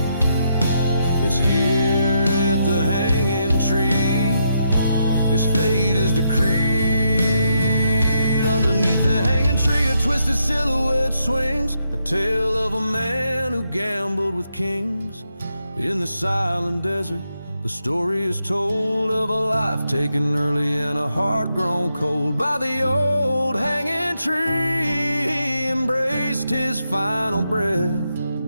It's here at the hanging tree, his fate is decreed. Underneath the hanging tree a twisted silhouette swings, a tale of a man who gambled with kings. In the silent desert The story is told of a life taken early and a heart grown cold by the old hanging tree. He embraced his final breath,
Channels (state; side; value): inverted; both; correlation -0.80